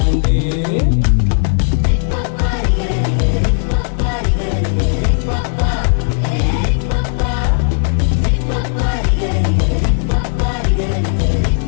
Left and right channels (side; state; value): right; silent; digital silence